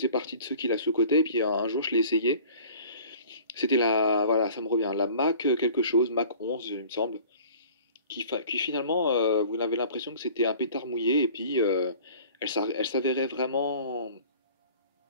partie de ceux qui la sous-cotaient, et puis un jour je l'ai essayé. C'était voilà, ça me revient, la Mac quelque chose, Mac 11 il me semble, qui finalement, vous avez l'impression que c'était un pétard mouillé, et puis elle s'avérait vraiment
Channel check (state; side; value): inverted; both; correlation -0.46